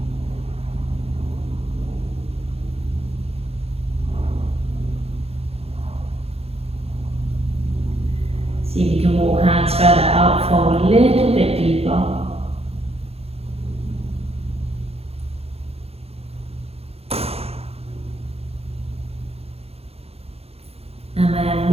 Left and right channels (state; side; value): late; left; 0.29 ms